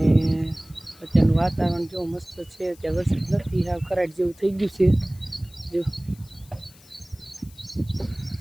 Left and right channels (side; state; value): left; noise; hiss, 25 dB below the sound